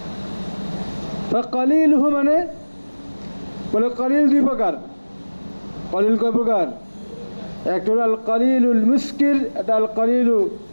ফাকালিলুহু মানে বলে কলিল দুই প্রকার। কলিল কয় প্রকার? একটা হলো আল কলিলুল মুস্কির, এটা আল কলিলু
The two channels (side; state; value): both; inverted; correlation -1.00